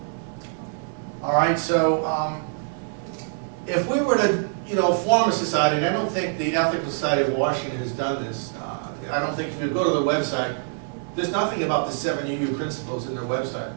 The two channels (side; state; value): left; silent; 61 dB below the other